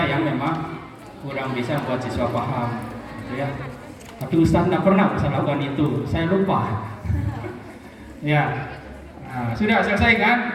yang memang kurang bisa membuat siswa paham. Gitu ya. Tapi Ustaz tidak pernah bisa lakukan itu, saya lupa. Ya, nah, sudah selesai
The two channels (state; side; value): identical; both; correlation 1.00